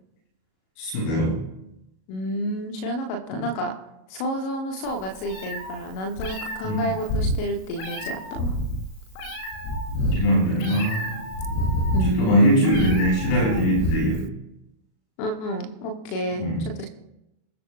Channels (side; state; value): right; late; 37 ms